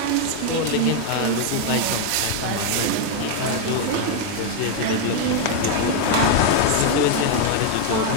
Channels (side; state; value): both; different; correlation 0.01